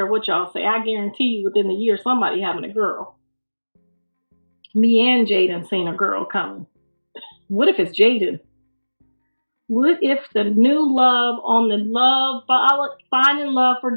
what y'all say. I guarantee you within the year, somebody having a girl. Me and Jaidyn seen a girl coming. What if it's Jaidyn? What if the new love on the love, finding love for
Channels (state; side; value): inverted; both; correlation -1.00